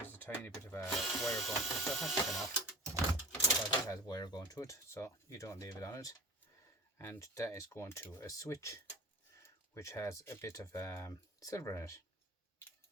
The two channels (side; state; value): both; normal; correlation 0.36